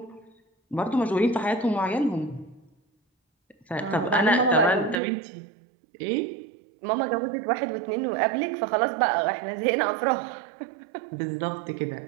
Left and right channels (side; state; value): left; drops out; at 5.0 s